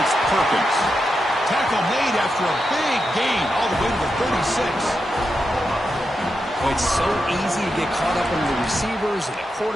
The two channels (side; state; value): both; normal; correlation 0.87